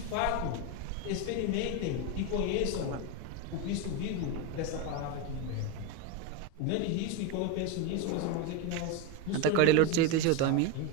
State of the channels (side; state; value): both; different; correlation 0.03